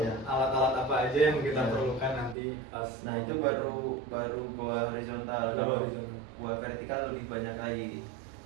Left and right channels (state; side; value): drops out; left; at 2.4 s